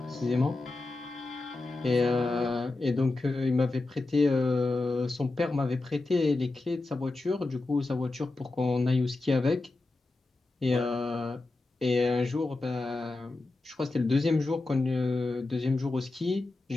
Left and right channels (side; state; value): right; quieter; 3.2 dB